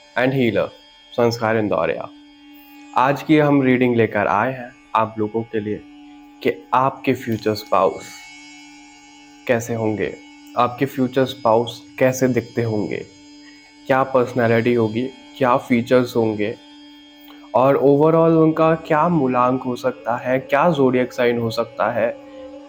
and healer, संस्कार इंदौरिया। आज की हम रीडिंग लेकर आए हैं आप लोगों के लिए कि आपके फ्यूचर स्पाउस कैसे होंगे, आपके फ्यूचर स्पाउस कैसे दिखते होंगे, क्या पर्सनैलिटी होगी, क्या फीचर्स होंगे और ओवरऑल उनका क्या मूलांक हो सकता है, क्या ज़ोडिएक साइन हो सकता है,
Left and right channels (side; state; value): both; identical; correlation 1.00